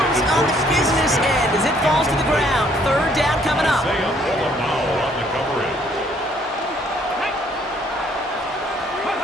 on the business end as it falls to the ground. Third down coming up.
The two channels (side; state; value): both; normal; correlation 0.64